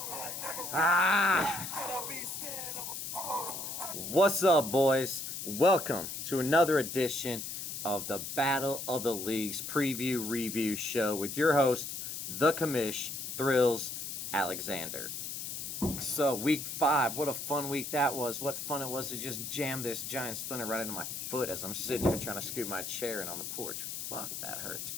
Ah! What's up, boys? Welcome to another edition of the Battle of the Leagues preview review show with your host, the Commish Thrills Alexander. So, week 5, what a fun week that was. What fun it was to just jam this giant splinter right into my foot as I'm sitting here trying to scoot my chair in on the porch. Fuck, that hurt.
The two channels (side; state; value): left; noise; hiss, 6 dB below the sound